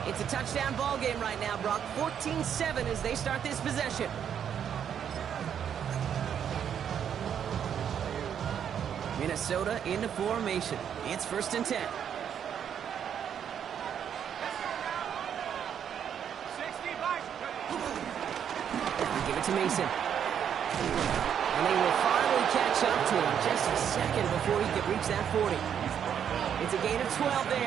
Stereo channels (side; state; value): left; quieter; 8.6 dB